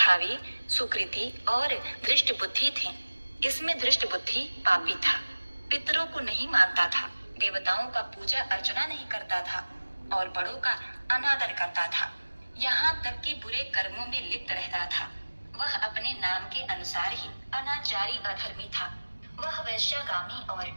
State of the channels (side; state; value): both; inverted; correlation -1.00